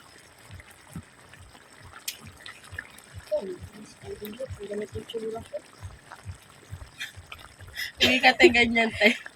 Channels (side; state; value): both; identical; correlation 1.00